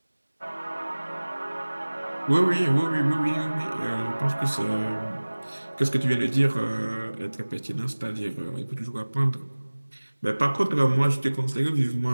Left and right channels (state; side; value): inverted; both; correlation -1.00